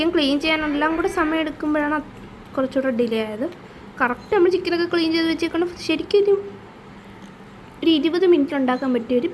ക്ലീൻ ചെയ്യാനെല്ലാം കൂടെ സമയം എടുക്കുമ്പോഴാണ് കുറച്ചുകൂടെ ഡിലേ ആയത്. കറക്റ്റ് നമ്മൾ ചിക്കനൊക്കെ ക്ലീൻ ചെയ്ത് വെച്ചേക്കണം. ശരിക്കും ഒരു 20 മിനിറ്റ് ഉണ്ടാക്കാൻ പറ്റിയ ഒരു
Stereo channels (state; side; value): identical; both; correlation 1.00